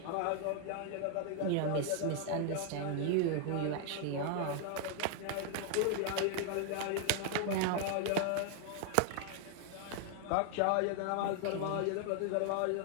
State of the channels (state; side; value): different; both; correlation 0.00